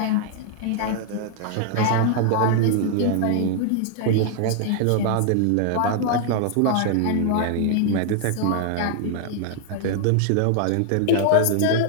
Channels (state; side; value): different; both; correlation 0.00